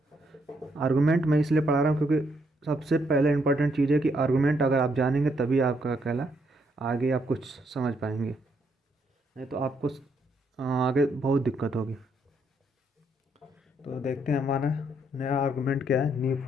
आर्गुमेंट मैं इसलिए पढ़ा रहा हूँ क्योंकि सबसे पहले इंपॉर्टेंट चीज़ है कि आर्गुमेंट अगर आप जानेंगे तभी आपका कहला आगे आप कुछ समझ पाएंगे, नहीं तो आपको आगे बहुत दिक्कत होगी। तो देखते हैं हमारा नया आर्गुमेंट क्या है, न्यू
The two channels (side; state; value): both; normal; correlation 0.74